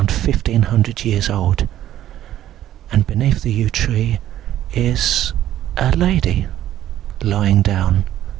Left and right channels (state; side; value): quieter; left; 12.5 dB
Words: 1500 years old, and beneath the yew tree is a lady lying down